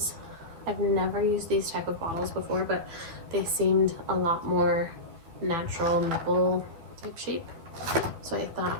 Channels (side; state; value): left; late; 12 ms